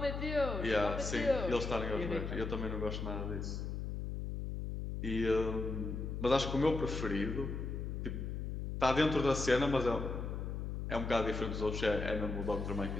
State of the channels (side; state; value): left; noise; hum, 4 dB below the sound